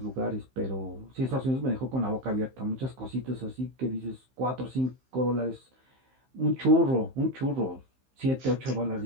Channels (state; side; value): late; left; 15 ms